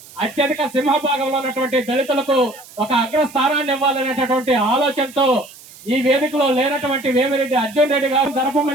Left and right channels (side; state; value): right; noise; hiss, 21 dB below the sound